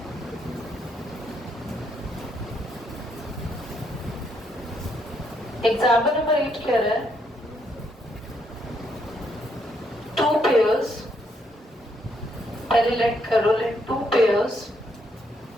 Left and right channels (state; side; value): normal; both; correlation 0.74